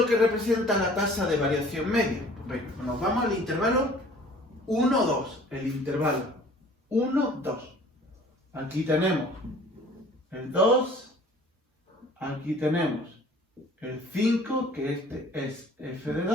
que representa la tasa de variación media? Pues venga, nos vamos al intervalo 1, 2. El intervalo 1, 2. Aquí tenemos el 2. Aquí tenemos el 5, que este es f de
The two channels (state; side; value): normal; both; correlation 0.51